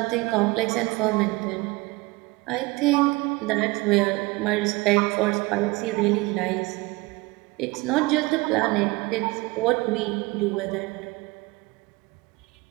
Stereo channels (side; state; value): left; quieter; 23.2 dB